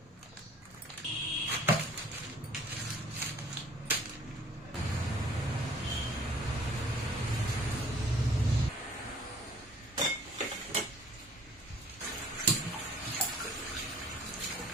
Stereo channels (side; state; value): both; normal; correlation 0.55